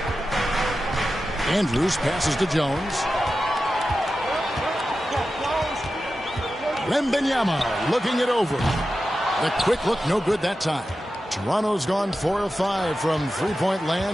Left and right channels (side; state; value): both; normal; correlation 0.92